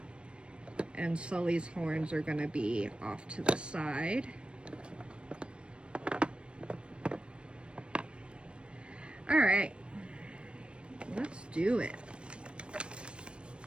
And Sully's horns are gonna be off to the side. All right, let's do it.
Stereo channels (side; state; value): left; late; 0.057 ms